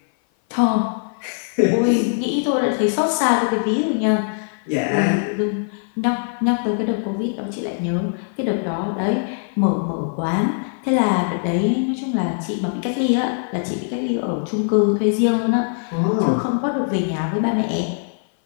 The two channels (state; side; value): silent; right; 57 dB below the other